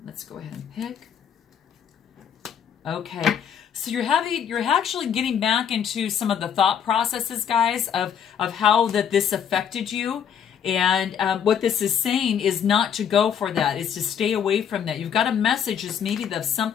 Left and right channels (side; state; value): right; quieter; 8.2 dB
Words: Let's go ahead and pick. Okay, so you're actually getting back into some of the thought processes, guys, of how this affected you. And what this is saying is not to go for that. It's to stay away from that. You've got a message is maybe of